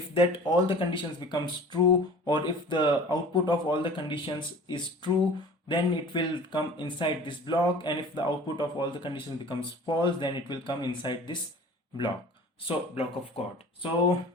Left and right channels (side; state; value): both; normal; correlation 0.43